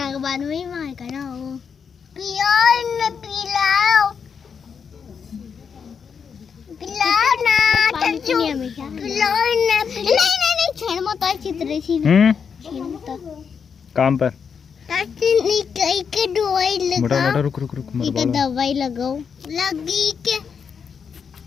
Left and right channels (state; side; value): quieter; right; 6.5 dB